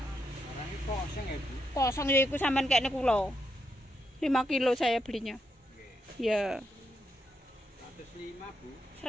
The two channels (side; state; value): both; normal; correlation 0.81